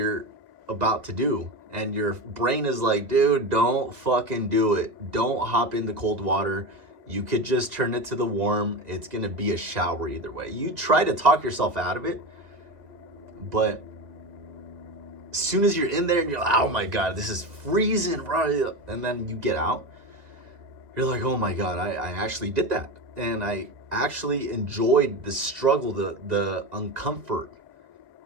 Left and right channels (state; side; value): late; left; 2.0 ms